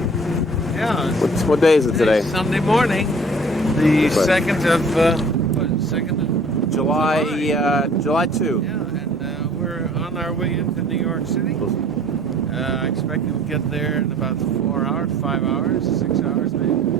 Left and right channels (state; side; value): normal; both; correlation 0.51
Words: Yeah. What day is it today? Sunday morning, the That's right. 2nd of July 2. Yeah, and we're on our way into New York City. I expect we'll get there in about 4 hours, 5 hours, 6 hours maybe.